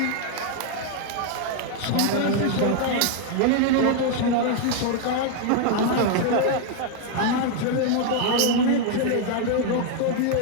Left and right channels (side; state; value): both; different; correlation 0.01